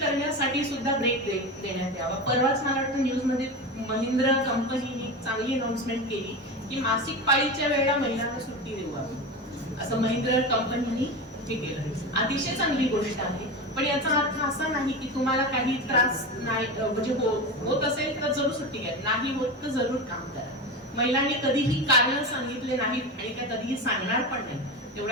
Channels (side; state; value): both; normal; correlation 0.23